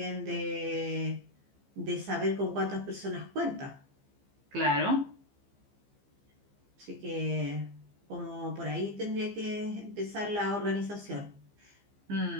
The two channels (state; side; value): late; left; 15 ms